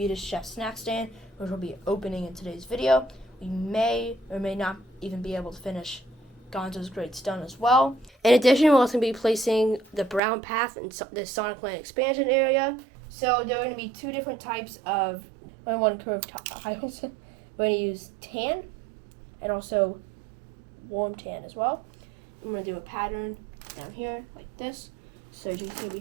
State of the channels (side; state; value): left; drops out; at 10.2 s